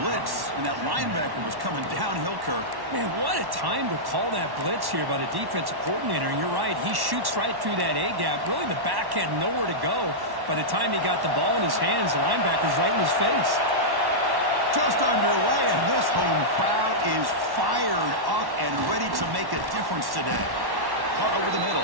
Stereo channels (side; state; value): left; late; 1.1 ms